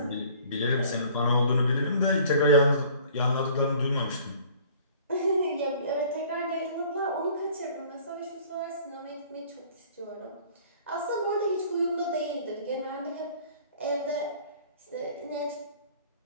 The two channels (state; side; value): inverted; both; correlation -0.52